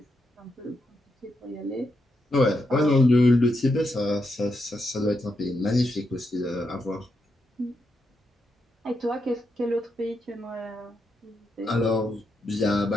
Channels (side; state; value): both; normal; correlation 0.83